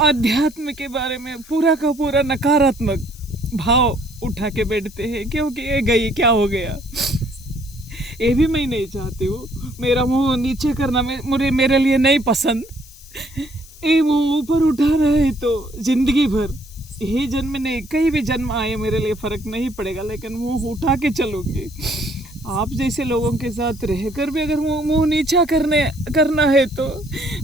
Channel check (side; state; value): left; noise; hiss, 21 dB below the sound